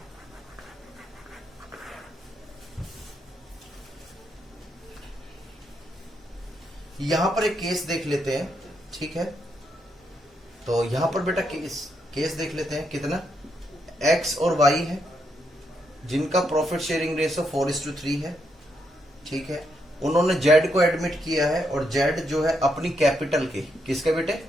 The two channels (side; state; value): both; normal; correlation 0.79